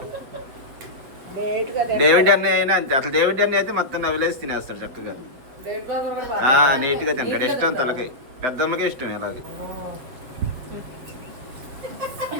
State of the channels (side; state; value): left; late; 8.0 ms